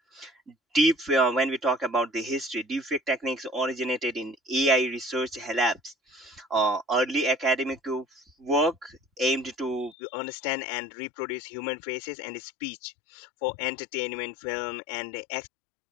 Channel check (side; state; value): right; drops out; at 10.0 s